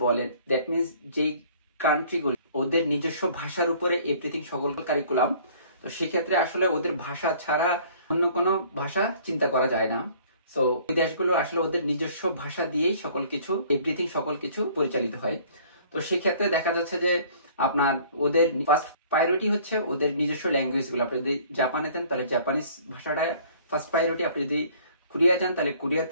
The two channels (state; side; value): inverted; both; correlation -0.54